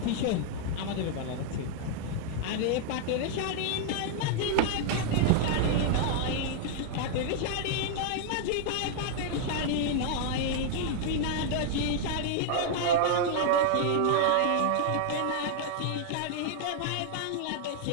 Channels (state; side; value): different; both; correlation 0.00